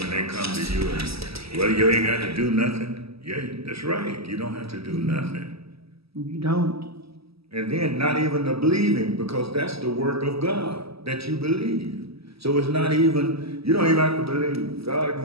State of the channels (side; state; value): left; late; 0.77 ms